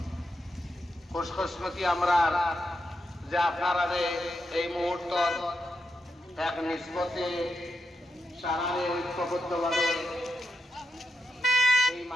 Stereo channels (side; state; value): both; normal; correlation 0.86